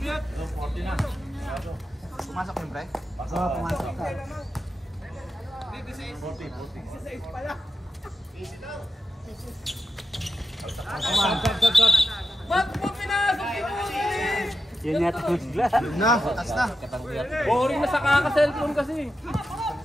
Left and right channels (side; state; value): both; normal; correlation 0.89